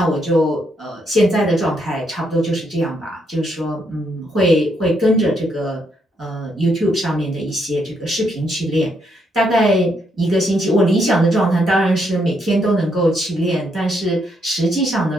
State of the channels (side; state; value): both; normal; correlation 0.76